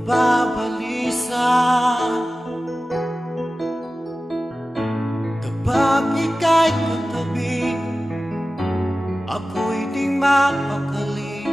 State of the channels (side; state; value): both; normal; correlation 0.95